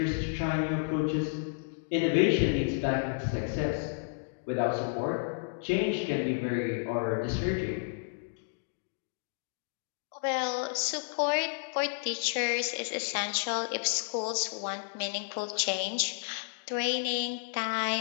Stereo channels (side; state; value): right; silent; digital silence